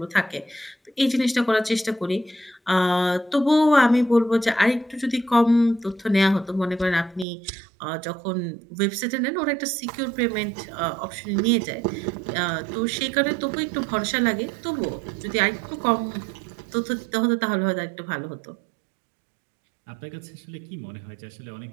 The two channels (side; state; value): left; drops out; at 7.2 s